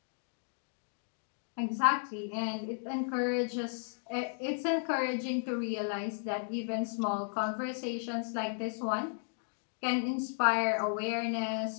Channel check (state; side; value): silent; right; digital silence